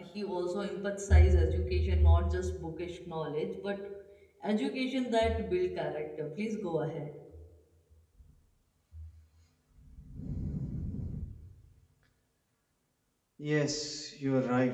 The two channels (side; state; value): both; identical; correlation 1.00